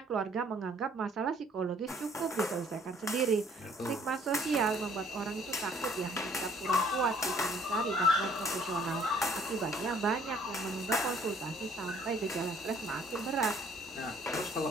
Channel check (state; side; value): normal; both; correlation 0.59